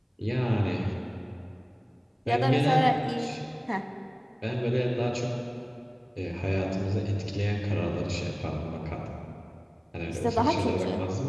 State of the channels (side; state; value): both; identical; correlation 1.00